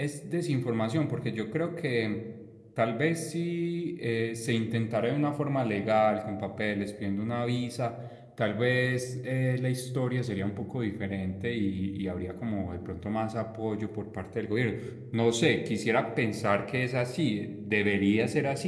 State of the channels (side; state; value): both; identical; correlation 1.00